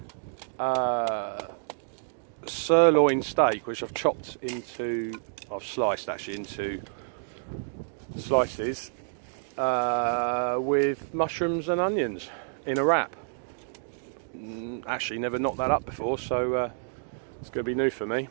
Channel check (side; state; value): left; silent; digital silence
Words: sirloin steak, which I've chopped into, I've sliced actually into slices, with mushrooms and onions in a wrap. Actually never knocked that up before, so it's going to be new for me.